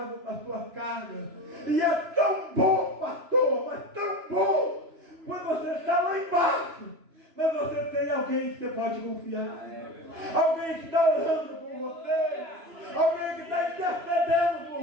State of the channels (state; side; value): late; left; 3.0 ms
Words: as suas cargas. E é tão bom, pastor, mas tão bom, quando você está lá embaixo, mas você tem alguém que você pode confiar, alguém que está orando por você, alguém que está intercedendo por